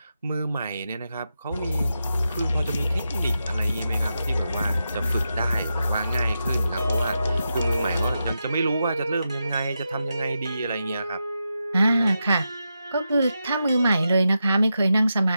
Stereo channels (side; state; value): both; inverted; correlation -0.87